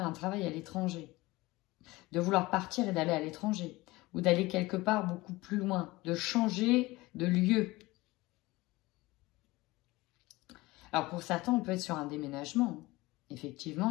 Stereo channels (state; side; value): quieter; right; 20.5 dB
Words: un travail à l'étranger. De vouloir partir et d'aller à l'étranger. Ou d'aller quelque part beaucoup plus loin. De changer de lieu. Alors, pour certains, on peut être sur un déménagement.